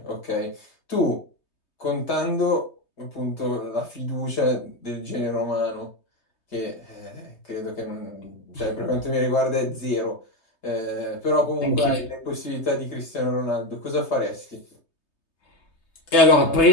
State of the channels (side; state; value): right; late; 3.2 ms